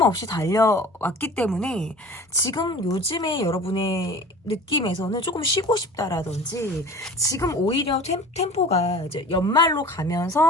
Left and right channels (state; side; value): normal; both; correlation 0.42